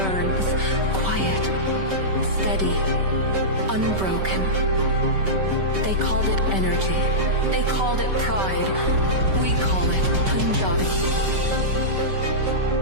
quiet, steady, unbroken. They called it energy. They called it pride. We call it Punjabi.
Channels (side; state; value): left; late; 5.2 ms